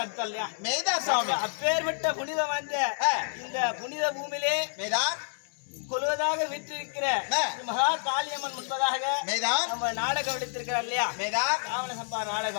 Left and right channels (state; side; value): silent; right; digital silence